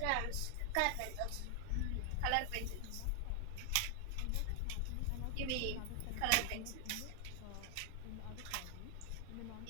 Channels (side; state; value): both; different; correlation 0.00